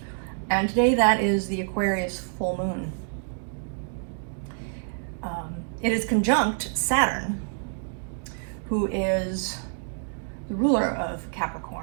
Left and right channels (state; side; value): silent; left; digital silence